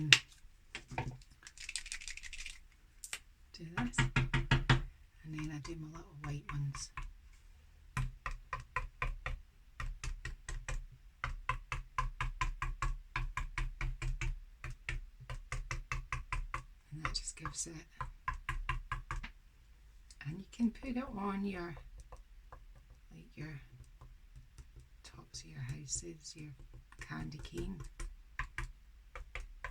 do this, and then I do my little white ones. And that just gives it, and you can put it on your, like your tops of your houses, your candy cane.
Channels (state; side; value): identical; both; correlation 1.00